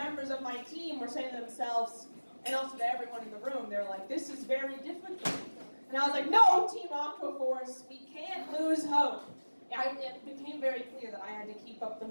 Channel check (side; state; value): both; inverted; correlation -1.00